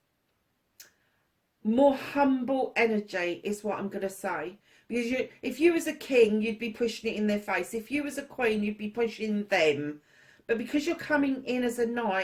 more humble energy, is what I'm going to say. Because if you was a king, you'd be pushing it in their face. If you was a queen, you'd be pushing them. But because you're coming in as a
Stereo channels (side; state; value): both; identical; correlation 1.00